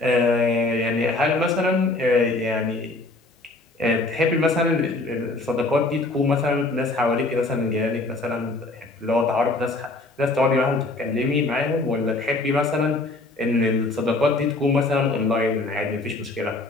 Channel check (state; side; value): quieter; right; 3.0 dB